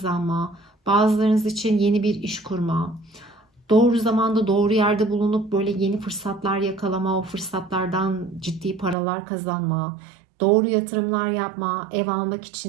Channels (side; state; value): left; drops out; at 9.0 s